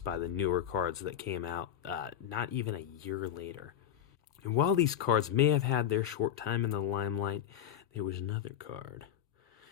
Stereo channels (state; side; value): quieter; right; 10.4 dB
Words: by the newer cards that came out not even a year later. And while these cards may have had their short time in the limelight, there was another card